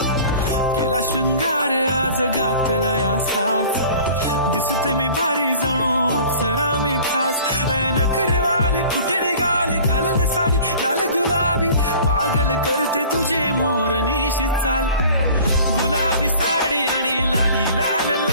केला शृंगार आज घातलाय असाच, दिसते मी भारी जणू अप्सरा मी खास. नखरेवाली कुठे निघाली घालून साडी लाल गुलाबी, पागल करते तुझे मोरनीशी चाल. गुलाबी साडी आणि लाली लाल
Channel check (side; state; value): both; inverted; correlation -0.45